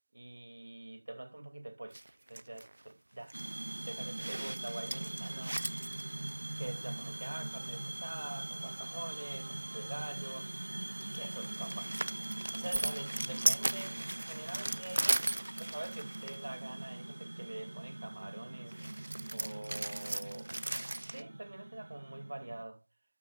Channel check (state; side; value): inverted; both; correlation -1.00